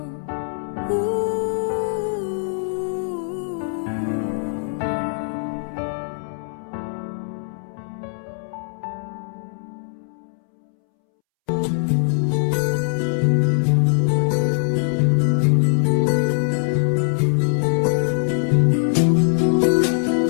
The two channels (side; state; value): right; silent; 64 dB below the other